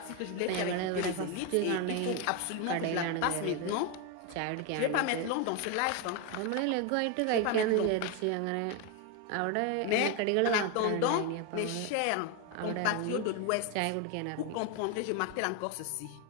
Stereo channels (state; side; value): different; both; correlation 0.02